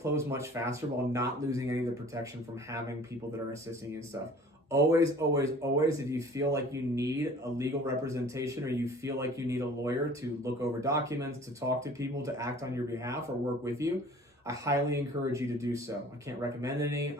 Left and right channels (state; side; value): normal; both; correlation 0.48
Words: much faster while not losing any of the protection from having people that are assisting you and stuff. Always, always, always, if you feel like you need a legal representation or you feel like you need a lawyer to look over documents, to talk to people, to act on your behalf or work with you, I highly encourage you to do so. I can't recommend any.